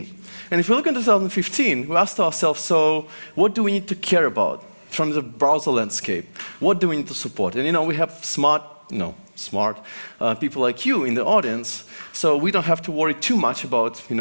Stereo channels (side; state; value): both; inverted; correlation -1.00